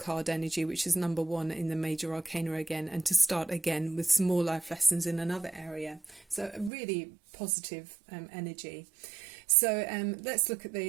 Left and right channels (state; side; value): drops out; left; at 6.7 s